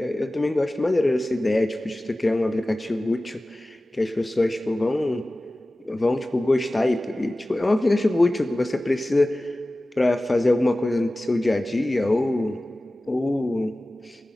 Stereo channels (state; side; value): normal; both; correlation 0.97